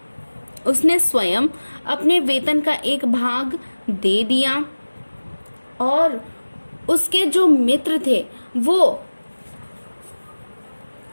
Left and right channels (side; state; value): both; inverted; correlation -1.00